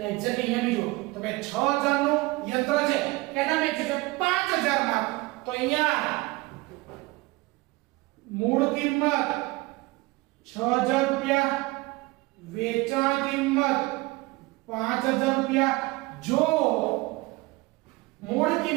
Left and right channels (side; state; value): left; quieter; 22.3 dB